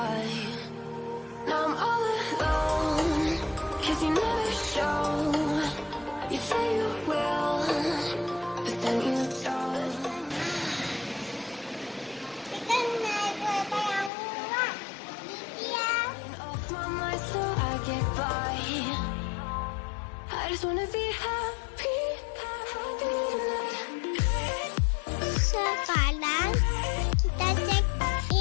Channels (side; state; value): right; drops out; at 14.1 s